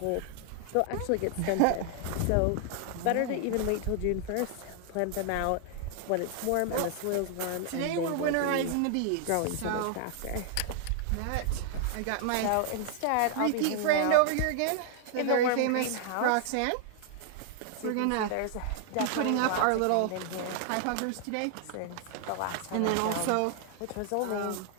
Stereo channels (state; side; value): different; both; correlation 0.00